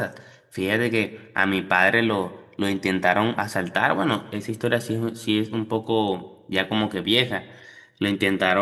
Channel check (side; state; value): both; identical; correlation 1.00